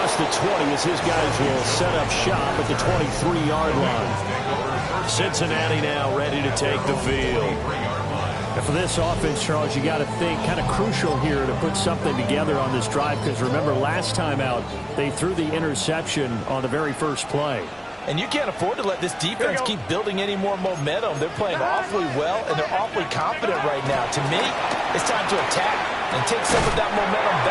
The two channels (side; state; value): both; identical; correlation 1.00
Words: the 20 as his guys will set up shop at the 23-yard line. Cincinnati now ready to take the field. And for this offense, Charles, you got to think kind of crucial here to put something together on this drive because remember last time out they threw the interception on the very first play. And you can't afford to let this defense keep building any more momentum. They're playing awfully well, and they're awfully confident right now. To me, it's time to attack and take some of that momentum